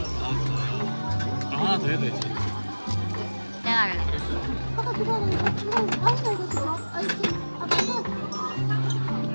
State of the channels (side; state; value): both; inverted; correlation -1.00